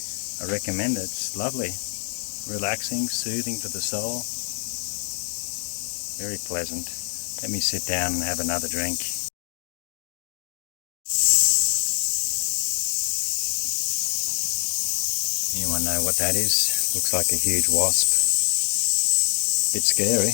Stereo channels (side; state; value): right; silent; 62 dB below the other